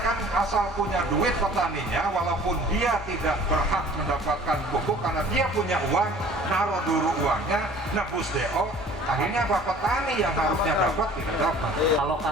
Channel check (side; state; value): both; normal; correlation 0.49